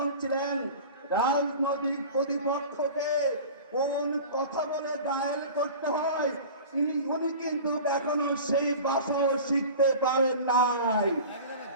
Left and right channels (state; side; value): inverted; both; correlation -0.37